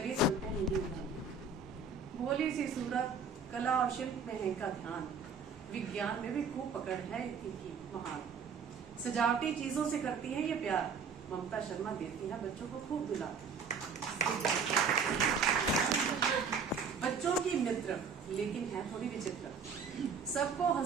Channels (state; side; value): quieter; left; 5.2 dB